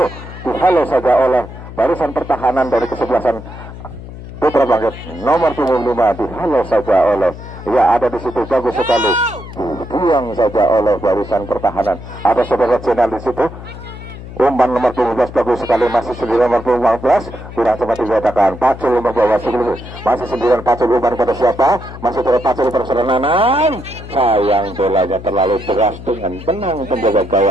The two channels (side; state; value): left; noise; hum, 13 dB below the sound